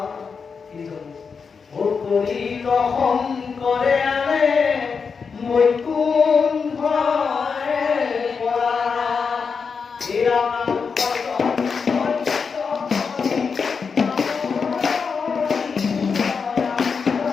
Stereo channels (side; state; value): right; quieter; 5.5 dB